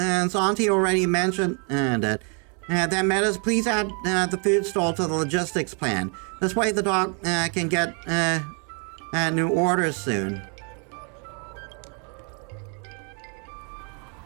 Auntie already mentioned it, then Metis, please add the food stall to the logistics plan. This way the doc can get new orders soon.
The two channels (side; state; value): left; quieter; 37.7 dB